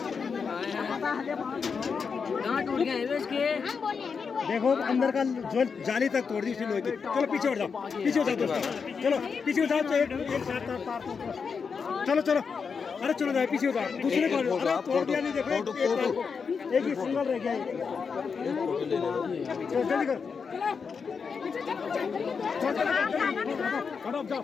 टूट गए इसके देखो अंदर का जो जाली तक तोड़ दी उसने लोहे की। चलो पीछे उठ जाओ, पीछे हो जाओ दोस्तों, चलो पीछे हो जाओ। तो एक साथ तार चलो चलो, अरे चलो जाए पीछे हो जाओ। दूसरे को अरे तोड़ दिया नहीं, देखो एक ही सिंगल रह गया। चलो जल्दी कर, जाओ,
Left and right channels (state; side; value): quieter; right; 5.7 dB